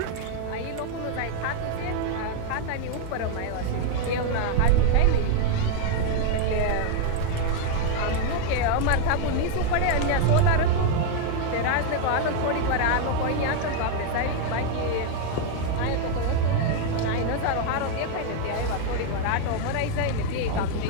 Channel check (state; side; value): different; both; correlation 0.01